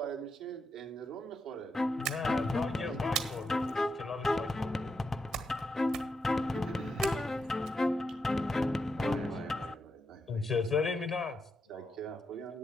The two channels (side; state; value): both; normal; correlation 0.84